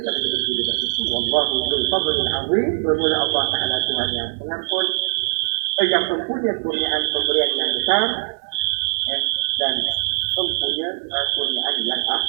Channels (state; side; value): silent; left; digital silence